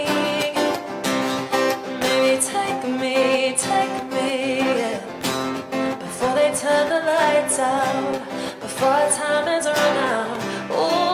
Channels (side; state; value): both; identical; correlation 1.00